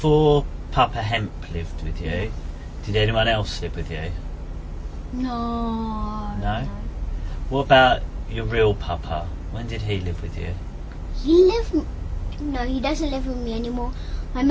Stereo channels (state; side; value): identical; both; correlation 1.00